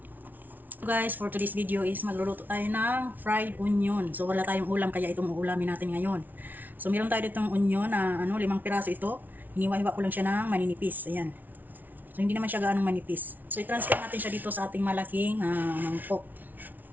So guys, for today's video is magluluto tayo ng fried onion. So wala tayong ulam kaya itong uulamin natin ngayon. So meron tayo ditong onion na 5 piraso ito. Hiniwa-hiwa ko lang siya ng maninipis. Ayan. So hindi naman siya gaanong manipis. So i-transfer natin siya dito sa ating malaking mangkok.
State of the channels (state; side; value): late; left; 0.082 ms